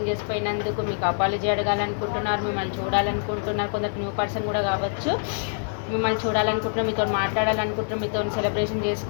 చేసిపోయినందుకు మీకు అపాలజీ అడగాలనుకుంటున్నారు. మిమ్మల్ని చూడాలనుకుంటున్నారు. కొందరు న్యూ పర్సన్ కూడా కావచ్చు. మిమ్మల్ని చూడాలనుకుంటున్నారు, మీతో మాట్లాడాలనుకుంటున్నారు, మీతో సెలబ్రేషన్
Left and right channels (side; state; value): right; silent; digital silence